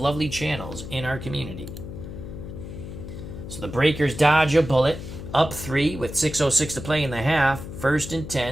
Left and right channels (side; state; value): left; noise; hum, 10 dB below the sound